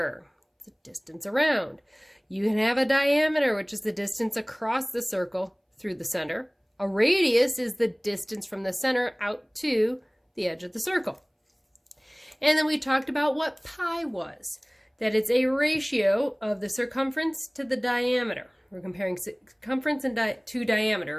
It's the distance around. You can have a diameter, which is the distance across the circle through the center. A radius is the distance from the center out to the edge of the circle. And then we talked about what pi was. That it's a ratio of the circumference to the diameter. We're comparing circumference to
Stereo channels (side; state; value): both; identical; correlation 1.00